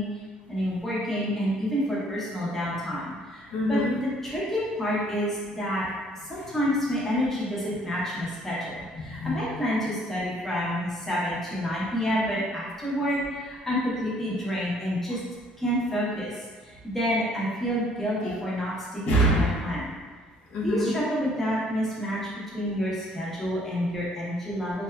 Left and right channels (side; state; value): both; normal; correlation 0.62